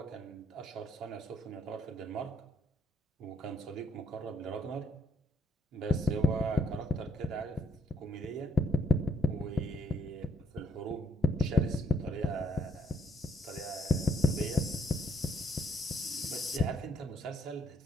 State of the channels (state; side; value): normal; both; correlation 0.70